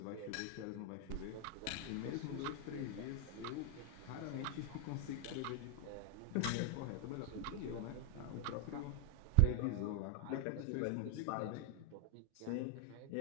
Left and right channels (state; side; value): different; both; correlation 0.00